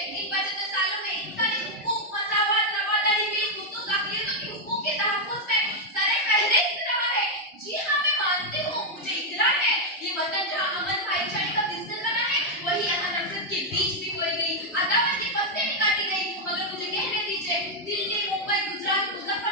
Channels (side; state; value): both; normal; correlation 0.00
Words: इन 75 सालों में इंसानी हुकूक, मसावत, रवादारी, बेखुसूस अक़लियतों के हुकूक के तहफ़्फ़ुज़ में सर-ए-फ़हरिस्त रहा है। जी हाँ, मैं मानती हूँ, मुझे इक़रार है, ये वतन जहाँ अमन भाईचारे का बिस्तर बना है, वही यहाँ नफ़रत के बीज भी बोई गई, अदावत की फसलें भी काटी गई। मगर मुझे कहने दीजिए, दिल्ली, मुंबई, गुजरात,